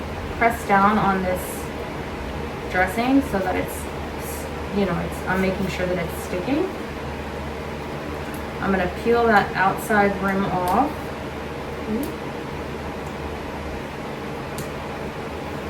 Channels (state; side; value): identical; both; correlation 1.00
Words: press down on this dressing so that it's, I'm making sure that it's sticking. I'm going to peel that outside rim off.